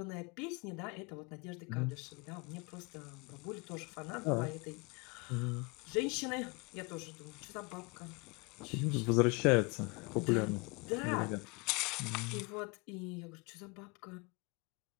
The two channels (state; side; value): quieter; right; 29.1 dB